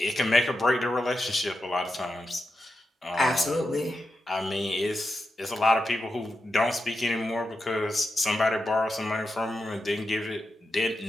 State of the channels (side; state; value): both; normal; correlation 0.88